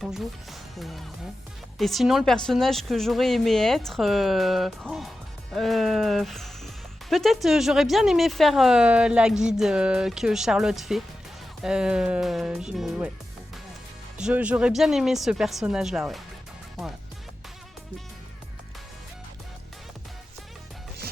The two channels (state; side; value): normal; both; correlation 0.93